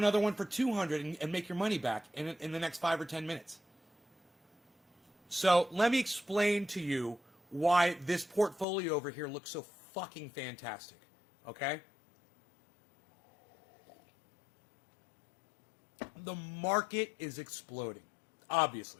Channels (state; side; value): drops out; right; at 8.7 s